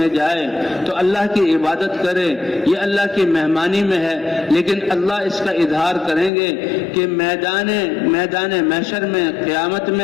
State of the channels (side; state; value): right; drops out; at 6.3 s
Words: میں جائے تو اللہ کی عبادت کرے، یہ اللہ کی مہمانی میں ہے، لیکن اللہ اس کا اظہار کریں گے کہ میدان محشر میں قیامت